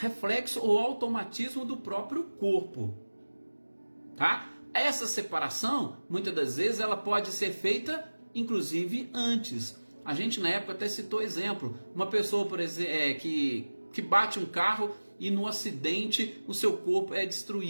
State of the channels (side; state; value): both; inverted; correlation -1.00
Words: ou automatismo do próprio corpo, tá? Essa separação, muitas das vezes, ela pode ser feita, inclusive, antes. A gente, na época, até citou exemplo. Uma pessoa, por exemplo, que bate um carro e no acidente o seu corpo é